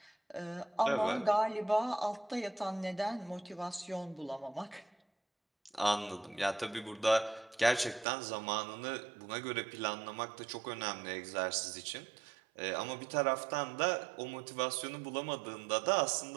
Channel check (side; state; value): left; drops out; at 8.1 s